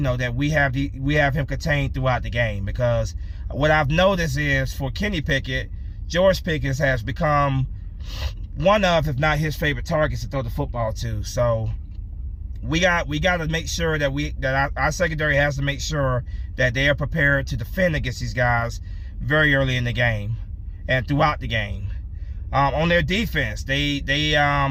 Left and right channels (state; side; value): identical; both; correlation 1.00